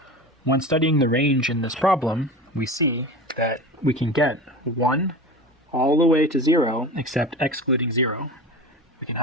When studying the range in this problem, we see that we can get 1 all the way to 0 except excluding 0. We can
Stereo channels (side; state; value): both; normal; correlation 0.31